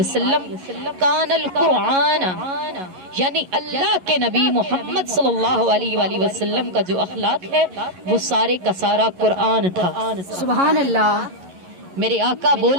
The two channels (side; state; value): left; late; 11 ms